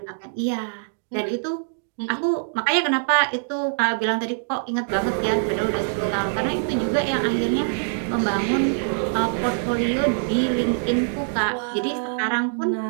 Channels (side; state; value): left; silent; digital silence